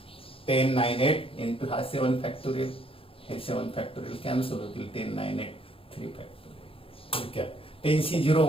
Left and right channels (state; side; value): late; right; 0.27 ms